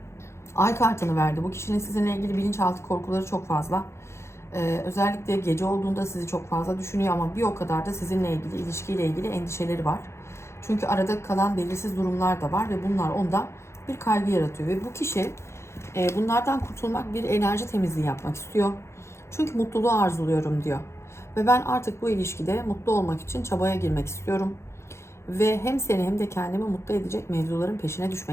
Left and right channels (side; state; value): right; late; 0.13 ms